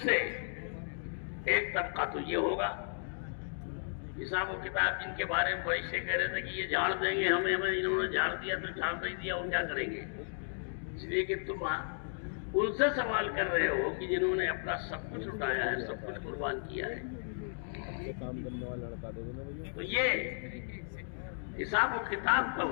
سے ایک طبقہ تو یہ ہوگا، حساب و کتاب جن کے بارے میں فرشتے کہہ رہے تھے کہ یہ جھاڑ دیں گے ہمیں، انہوں نے جھاڑ دیا تو جھاڑ نہیں دیا، وہ کیا کریں گے؟ اس لیے کہ تم ان سے سوال کر رہے ہو کہ جنہوں نے اپنا سب کچھ اٹھایا ہے، سب کچھ قربان کیا ہے. تو یہ حساب و کتاب کا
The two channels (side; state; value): right; silent; digital silence